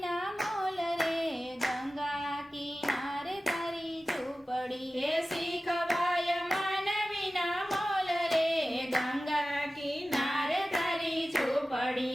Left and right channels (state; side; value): normal; both; correlation 0.96